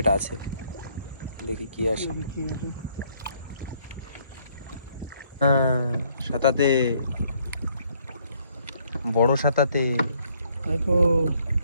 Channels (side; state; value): both; inverted; correlation -0.67